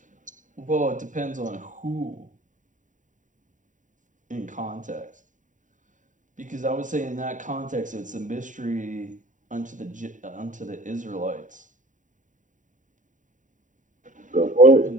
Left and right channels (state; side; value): late; left; 0.37 ms